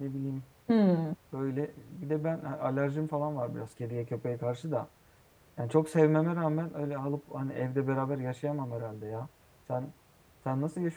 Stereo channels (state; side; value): identical; both; correlation 1.00